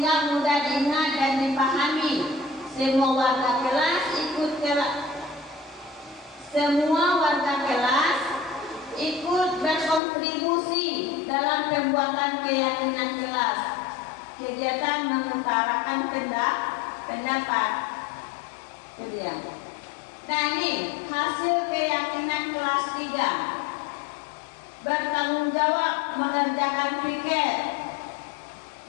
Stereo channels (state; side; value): drops out; right; at 10.0 s